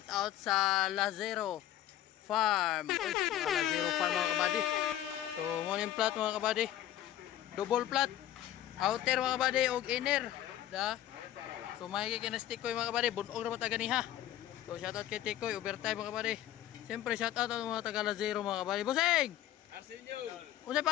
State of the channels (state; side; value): quieter; right; 12.7 dB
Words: out sa Lazero Farm. Uy, Lazero Farm mga kabady. So morning plat mga kabady. Double plat. Outer mga kabady og inner. Da. So may kinastik ko mga kabady, bunog na mata ganiha. So shout out kay Tikoy, overtime mga kabady. Siyempre shout out ang mga taga Lazero mga kabady. Bossing! Arsenio! Unsay